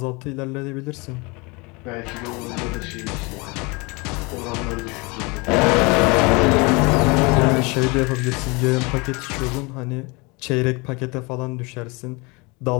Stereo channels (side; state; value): right; quieter; 27.5 dB